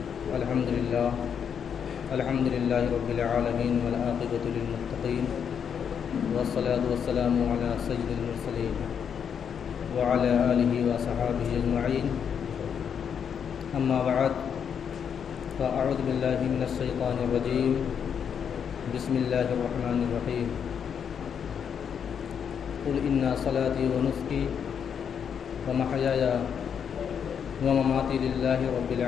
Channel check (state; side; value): quieter; right; 7.6 dB